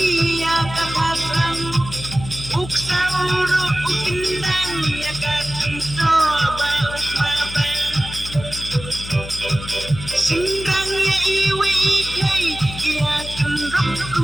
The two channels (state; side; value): noise; left; hum, 11 dB below the sound